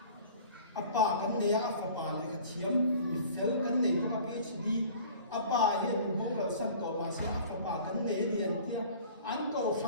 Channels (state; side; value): inverted; both; correlation -0.46